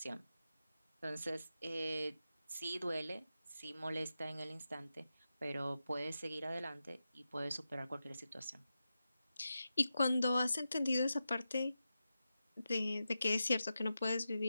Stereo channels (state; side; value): inverted; both; correlation -0.91